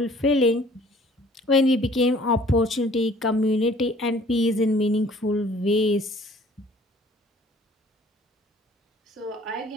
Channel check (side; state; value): both; normal; correlation 0.54